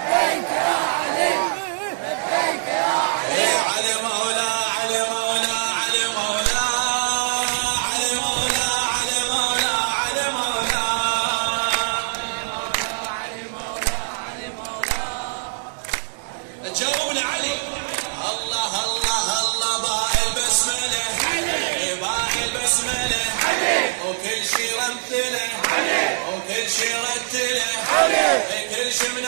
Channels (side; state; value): left; silent; digital silence